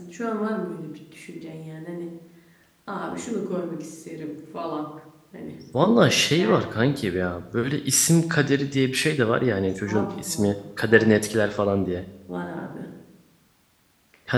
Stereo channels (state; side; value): identical; both; correlation 1.00